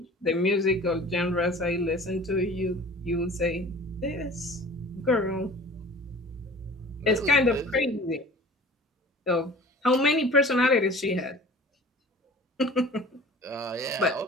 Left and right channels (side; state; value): both; normal; correlation 0.44